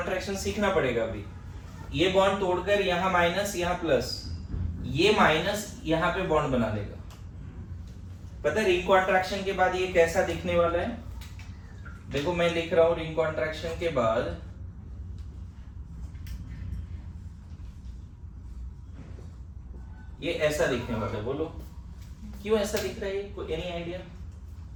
सीखना पड़ेगा अभी। ये बॉन्ड तोड़कर यहाँ माइनस, यहाँ प्लस, ये माइनस यहाँ पे बॉन्ड बना लेगा। पता है रिंग कॉन्ट्रैक्शन के बाद ये कैसा दिखने वाला है? देखो मैं लिख रहा हूं, रिंग कॉन्ट्रैक्शन के बाद ये ऐसा दिखने वाला है। बोलो क्यों ऐसा दिख रहा है? कोई एनी आइडिया?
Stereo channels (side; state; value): both; identical; correlation 1.00